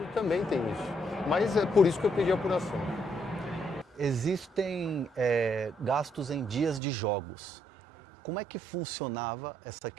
também tem isso. Mas é por isso que eu pedi apuração. Existem gastos em dias de jogos. Como é que funcionava essa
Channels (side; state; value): left; drops out; at 6.8 s